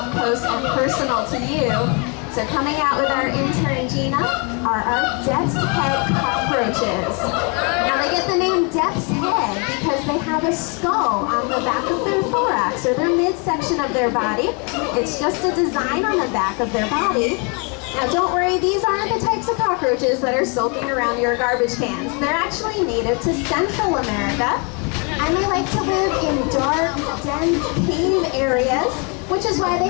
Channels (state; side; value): quieter; right; 33.9 dB